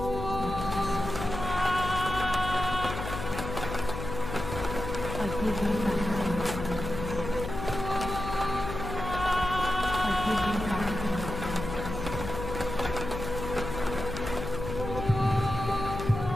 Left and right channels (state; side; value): noise; left; hum, 6 dB below the sound